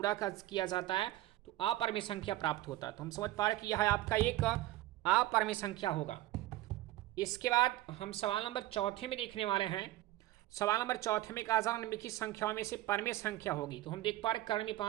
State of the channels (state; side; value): quieter; left; 16.2 dB